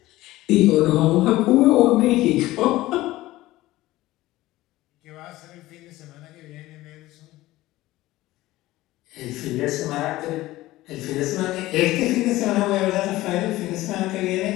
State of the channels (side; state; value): right; quieter; 17.2 dB